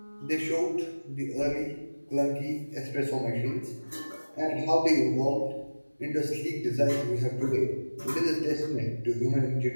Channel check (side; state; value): both; inverted; correlation -1.00